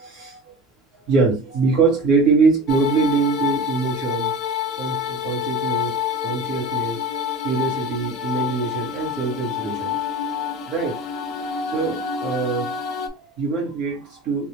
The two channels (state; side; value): normal; both; correlation 0.33